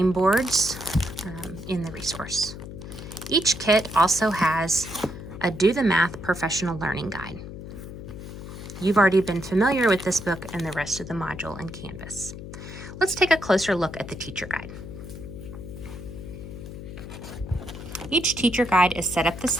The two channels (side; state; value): left; noise; hum, 11 dB below the sound